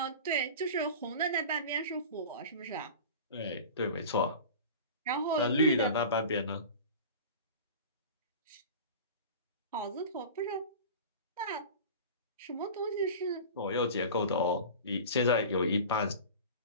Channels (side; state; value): both; inverted; correlation -0.34